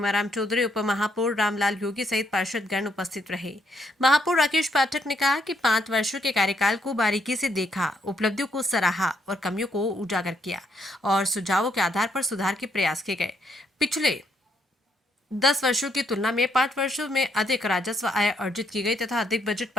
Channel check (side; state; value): both; normal; correlation 0.74